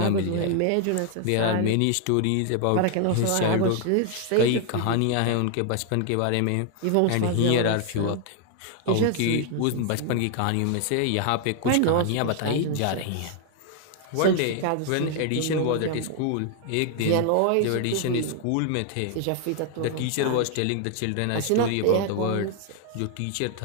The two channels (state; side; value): different; both; correlation 0.00